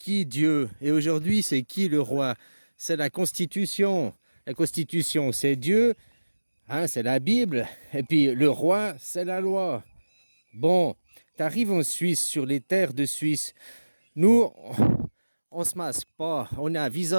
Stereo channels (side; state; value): both; inverted; correlation -1.00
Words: Dieu? Et aujourd'hui, c'est qui le roi? C'est la Constitution. La Constitution, c'est Dieu, hein, c'est la Bible. Et puis le roi, c'est la loi. Bon, t'arrives en Suisse, sur les terres de Suisse. Nous, on se masque pas. On a un